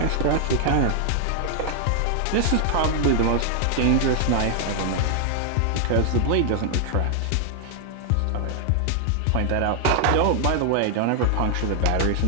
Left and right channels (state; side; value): different; both; correlation 0.00